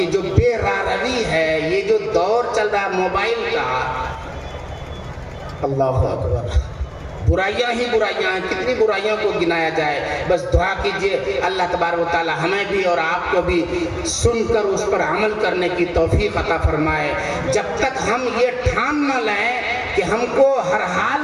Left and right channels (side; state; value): both; identical; correlation 1.00